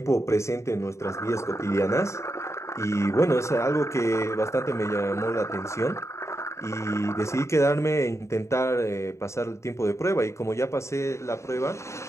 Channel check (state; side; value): late; right; 0.14 ms